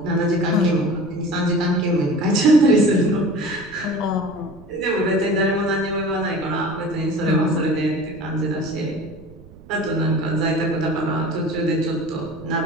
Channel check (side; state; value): right; noise; rumble, 20 dB below the sound